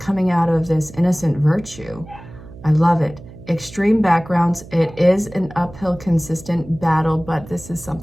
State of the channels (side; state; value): right; noise; hum, 18 dB below the sound